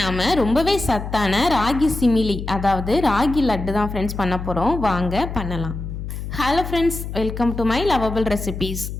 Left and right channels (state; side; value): noise; left; hum, 7 dB below the sound